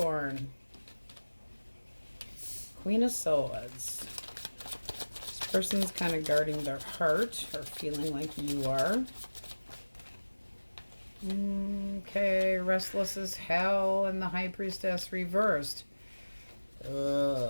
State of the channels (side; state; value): both; inverted; correlation -1.00